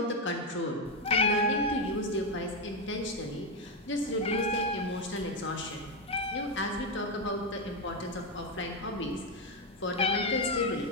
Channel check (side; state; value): both; normal; correlation 0.06